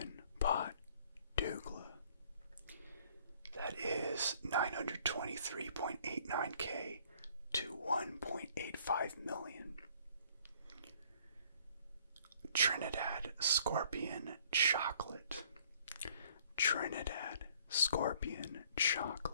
Pot Douglas. That is 923.89K to 1.85 million. Trinidad Scorpion Chocolate, Trinidad Scorpion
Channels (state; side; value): inverted; both; correlation -0.59